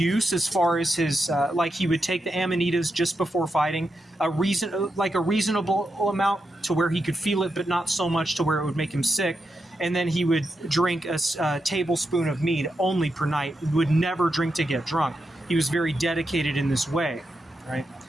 as far as his, like he would take the amanitas just before fighting, a reasonable amount to where he could feel it, but not so much to where it would make him sick. And then he would drink a tablespoon of mead only per night. He would never drink to get drunk. He was very dedicated in this way, right?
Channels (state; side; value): normal; both; correlation 0.86